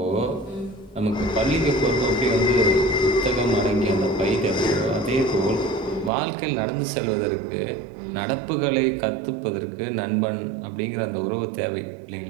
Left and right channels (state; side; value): drops out; left; at 6.1 s